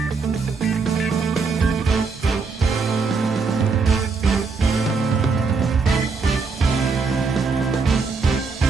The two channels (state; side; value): quieter; left; 4.6 dB